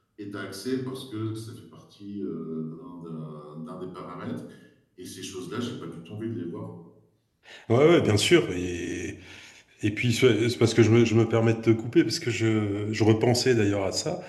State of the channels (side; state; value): both; identical; correlation 1.00